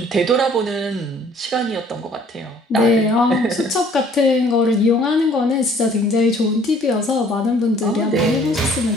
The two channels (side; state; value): both; normal; correlation 0.57